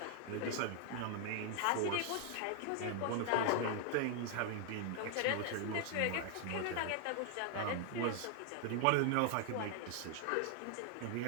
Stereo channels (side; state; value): both; different; correlation 0.00